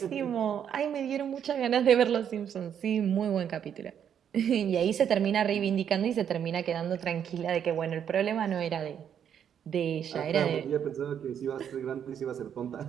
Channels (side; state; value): left; quieter; 8.7 dB